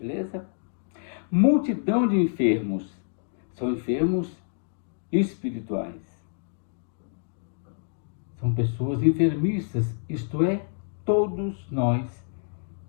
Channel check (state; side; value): silent; right; digital silence